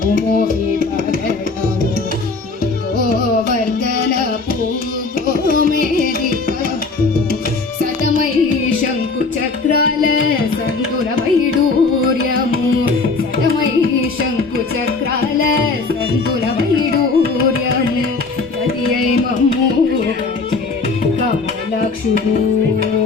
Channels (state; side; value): quieter; right; 4.0 dB